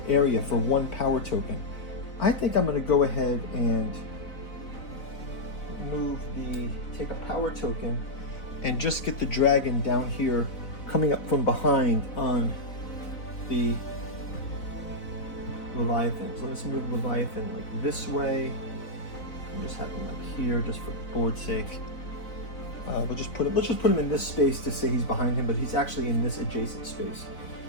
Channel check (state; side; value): late; right; 4.0 ms